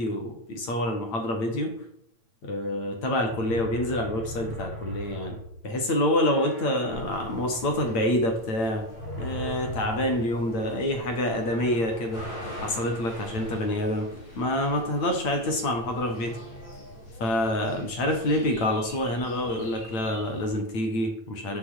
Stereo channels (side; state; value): right; late; 8.9 ms